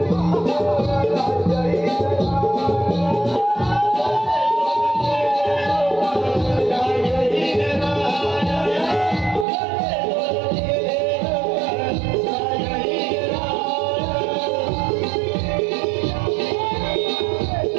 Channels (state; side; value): drops out; left; at 9.5 s